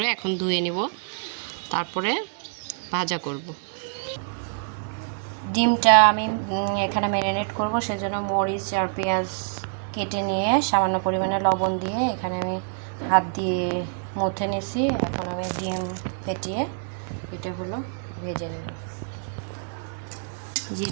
এখন ধুয়ে নিব, তারপরে ভাজা করব। ডিমটা আমি এখানে ম্যারিনেট করব, সেজন্য মরিচ আর পেঁয়াজ কেটে নিয়ে সামান্য পরিমাণে লবণ দিয়ে এখানে আমি হাত দিয়ে মুথে নিয়েছি। এখন আমি ডিম ফেটিয়ে এটা হলো ভেজে নেব। যে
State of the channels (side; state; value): left; silent; digital silence